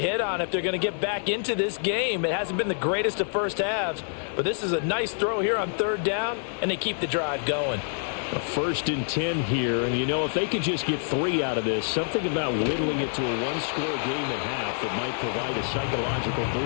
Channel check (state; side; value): silent; right; digital silence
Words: hit on if they're going to get back into this game. It hasn't been the greatest of first halves, but this is a nice throw here on third down, and they keep the drive going. A 1st and 10 here, and if they could just get 3 out of this, something about whittling it to a one-score game at half that might provide a psychological